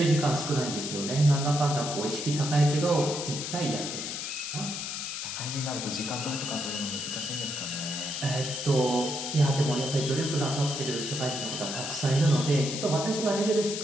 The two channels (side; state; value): left; noise; hiss, 5 dB below the sound